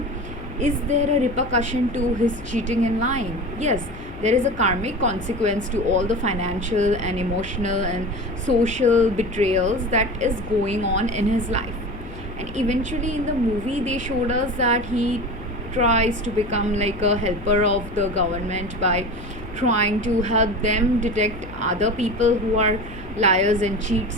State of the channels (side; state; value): left; noise; hum, 16 dB below the sound